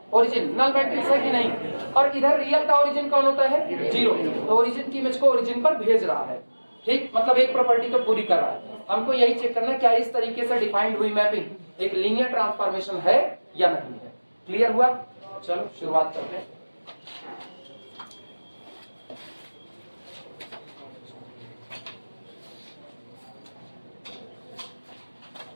ओरिजिन नल मैट्रिक्स है कि नहीं, और इधर रियल का ओरिजिन कौन होता है, 0, तो ओरिजिन की इमेज को ओरिजिन पर भेज रहा है। ठीक, मतलब एक प्रॉपर्टी तो पूरी कर रहा है। हमको यही चेक करना है क्या इस तरीके से डिफाइंड हुई मैपिंग एक लीनियर ट्रांसफॉर्मेशन है या नहीं है। क्लियर हुआ? चलो शुरुआत करते हैं।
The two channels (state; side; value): inverted; both; correlation -1.00